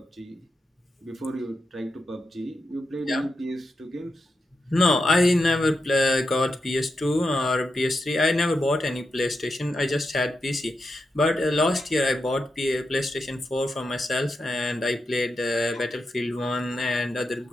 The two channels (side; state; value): both; normal; correlation 0.87